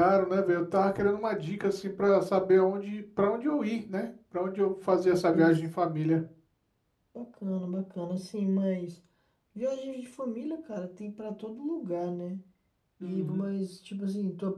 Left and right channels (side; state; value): both; identical; correlation 1.00